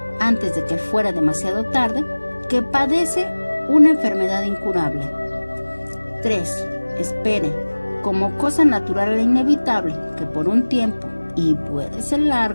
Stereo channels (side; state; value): both; inverted; correlation -1.00